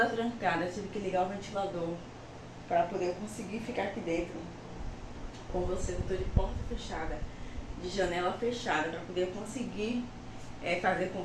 trancada, tive que ligar o ventilador para poder conseguir ficar aqui dentro com vocês. Eu estou de porta fechada, de janela fechada, para poder conseguir fazer com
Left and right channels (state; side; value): identical; both; correlation 1.00